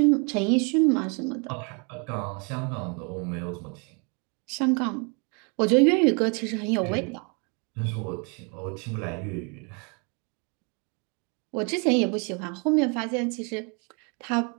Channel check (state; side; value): quieter; left; 34.2 dB